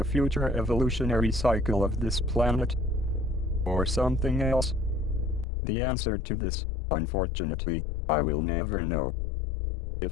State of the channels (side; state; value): right; drops out; at 5.5 s